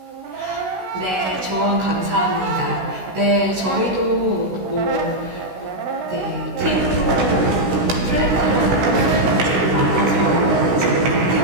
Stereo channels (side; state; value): left; late; 16 ms